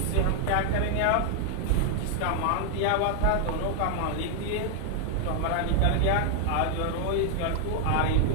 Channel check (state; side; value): different; both; correlation 0.00